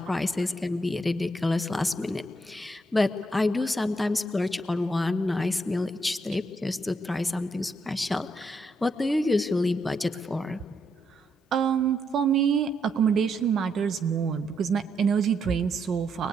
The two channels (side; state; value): both; normal; correlation 0.78